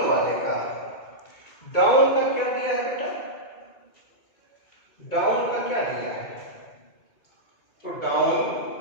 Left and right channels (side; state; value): right; late; 2.2 ms